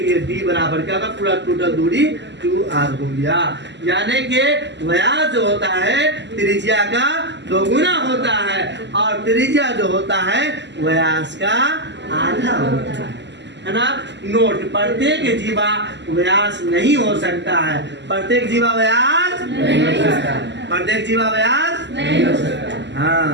d बराबर क्या होगा? पूरा टोटल दूरी 2r हो गया। यानी कि व्यास जो होता है त्रिज्या का 2 गुना होता है, और त्रिज्या जो होता है व्यास का आधा होता है ना। नोट, प्रत्येक जीवा व्यास नहीं हो सकता है। प्रत्येक जीवा व्यास नहीं हो सकता। प्रत्येक जीवा व्यास नहीं हो सकता।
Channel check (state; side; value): late; left; 0.51 ms